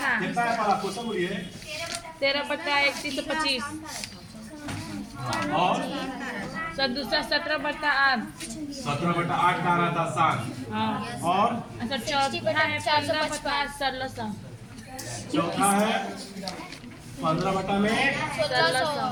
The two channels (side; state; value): both; identical; correlation 1.00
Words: कितना है पहला क्वेश्चन? बोलिए। 13/3125 और दूसरा 17/8। 17/8 का आ रहा था शांत। हाँ। और अच्छा, चौथा है 15/8 1600। चौथा है 15 में 1600।